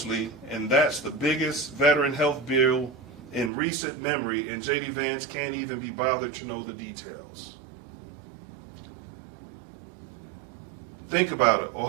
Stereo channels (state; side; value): drops out; left; at 3.5 s